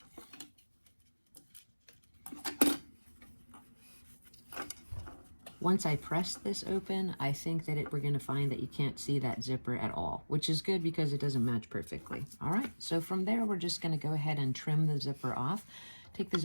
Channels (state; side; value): inverted; both; correlation -1.00